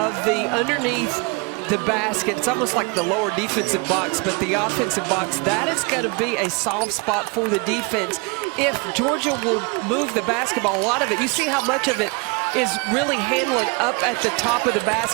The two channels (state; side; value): quieter; left; 29.8 dB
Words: the underneath the basket, it's almost like the lower defensive box, but the offensive box, that is going to be a soft spot for the defense. If Georgia will move the basketball, a lot of it, you see how much of it is really handling up at the top of the